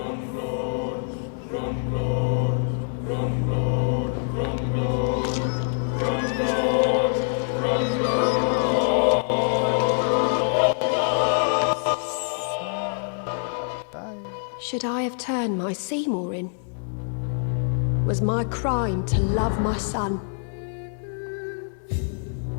Bye. Should I have turned my Seymour in? Was my crime to love my son?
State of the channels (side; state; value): right; silent; 58 dB below the other